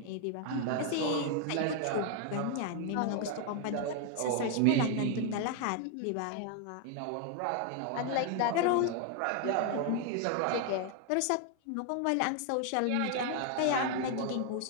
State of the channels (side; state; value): both; different; correlation 0.00